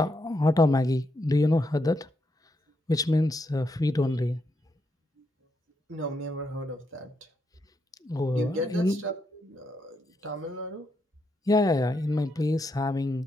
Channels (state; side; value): normal; both; correlation 0.80